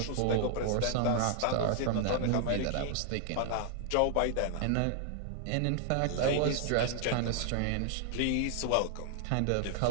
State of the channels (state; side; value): different; both; correlation 0.00